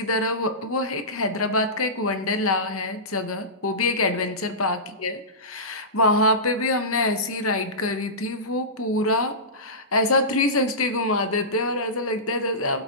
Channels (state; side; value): normal; both; correlation -0.19